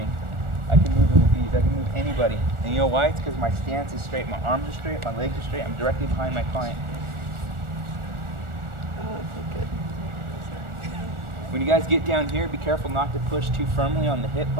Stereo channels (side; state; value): left; late; 1.4 ms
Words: I can move him with ease. I can move anybody. And you know why? It's because my stance is straight. My arms are straight. My legs are straight. I'm directly behind my client. Oh, okay, good. When you guys get down here, be careful not to push too firmly on the hip